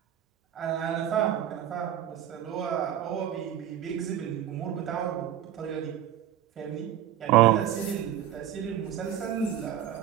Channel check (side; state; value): left; quieter; 11.1 dB